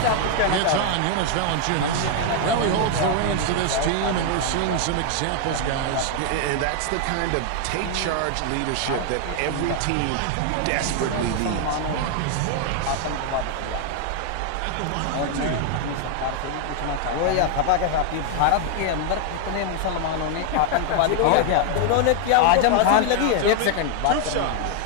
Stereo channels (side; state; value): both; different; correlation 0.00